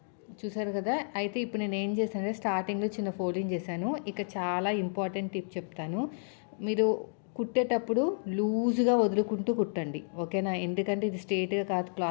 చూసారు కదా! అయితే ఇప్పుడు నేను ఏం చేశానంటే స్టార్టింగ్‌లో చిన్న ఫోల్డింగ్ చేశాను. ఇక చాలా ఇంపార్టెంట్ టిప్ చెప్తాను. మీరు కుట్టేటప్పుడు లూజ్‌గా వదులుకుంటూ కుట్టండి. ఓకేనా? ఎందుకంటే ఇది స్ట్రెయిట్‌గా కాదు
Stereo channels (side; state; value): right; silent; digital silence